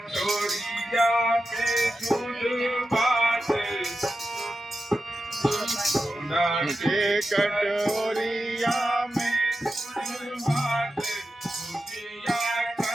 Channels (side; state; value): both; normal; correlation 0.91